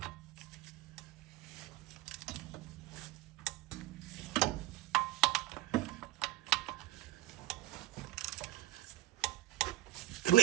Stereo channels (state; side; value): quieter; left; 16.2 dB